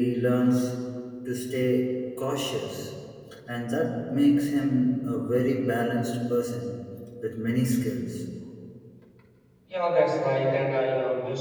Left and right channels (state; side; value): identical; both; correlation 1.00